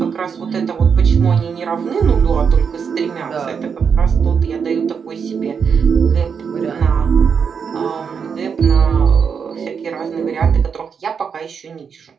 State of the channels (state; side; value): quieter; left; 6.4 dB